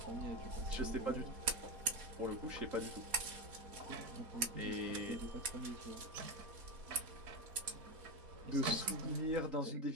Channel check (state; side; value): late; left; 4.1 ms